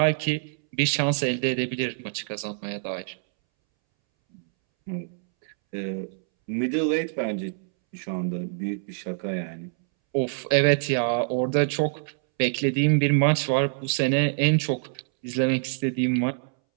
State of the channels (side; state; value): left; silent; 61 dB below the other